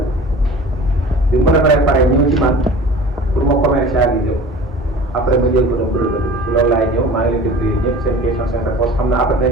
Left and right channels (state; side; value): normal; both; correlation 0.40